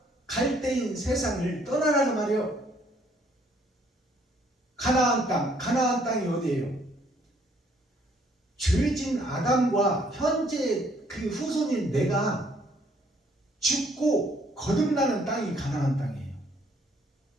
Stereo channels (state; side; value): normal; both; correlation 0.64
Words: 갈대인 세상을 떠나라 그 말이에요. 가나안 땅, 가나안 땅이 어디예요? 죄진 아담과 현재 그 후손인 내가 죽고 거듭나는 땅이 가나안 땅이에요.